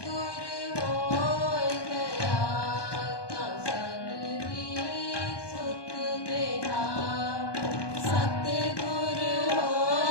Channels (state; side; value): late; right; 1.2 ms